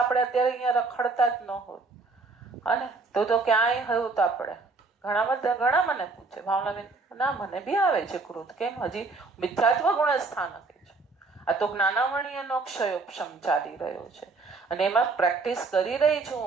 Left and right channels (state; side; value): quieter; left; 3.8 dB